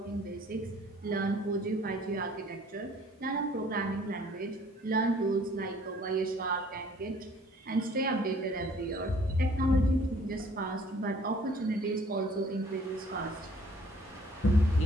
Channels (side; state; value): both; normal; correlation 0.56